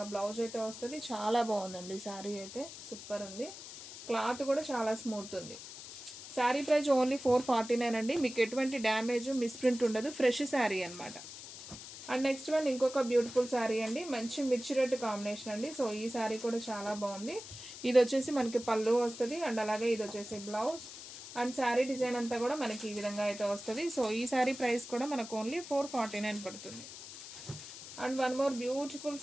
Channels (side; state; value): left; noise; hiss, 13 dB below the sound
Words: బ్లౌజ్ అయితే వస్తుంది. చాలా బాగుందండి శారీ అయితే, సూపర్ ఉంది. క్లాత్ కూడా చాలా స్మూత్ ఉంది. శారీ ప్రైస్ ఓన్లీ 449 అండి. మీకు ఎటువంటి డ్యామేజ్ మిస్ప్రింట్ ఉండదు. ఫ్రెష్ శారీ అనమాట. అండ్ నెక్స్ట్ వన్ ఇంకొక బ్యూటిఫుల్ శారీ అండి, మంచి మిర్చి రెడ్ కాంబినేషన్ అండి. సో ఈ శారీ కూడా చాలా బాగుంది. ఇది వచ్చేసి మనకి పళ్ళు వస్తుంది, అండ్ అలాగే ఇది వచ్చేసి బ్లౌజ్. అండ్ శారీ డిజైన్ అంతా కూడా మనకి ఈ విధంగా అయితే వస్తుంది. సో ఈ శారీ ప్రైస్ కూడా మనకు ఓన్లీ 449 పడుతుంది. And one more beautiful